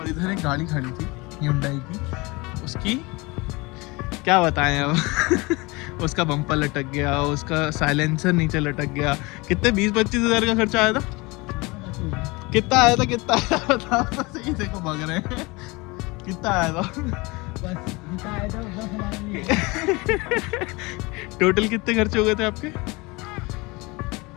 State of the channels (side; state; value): right; quieter; 24.9 dB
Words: इधर एक गाड़ी खड़ी थी Hyundai की, उसकी क्या बताएं अब। उसका बम्पर लटक गया, उसका साइलेंसर नीचे लटक गया। कितने 20-25 हज़ार का खर्चा आया था? कितना आया था बताओ तो सही। देखो भाग रहे हैं। कितना आया था? बस जितना आया था उतना हमारे लिए। टोटल कितने खर्चे हो गए थे आपके?